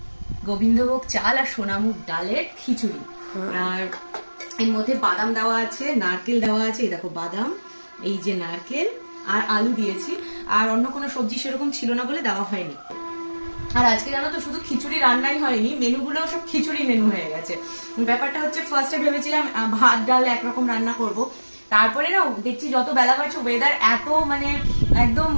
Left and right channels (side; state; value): both; inverted; correlation -1.00